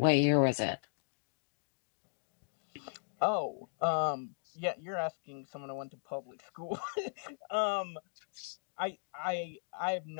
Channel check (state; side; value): quieter; right; 39.7 dB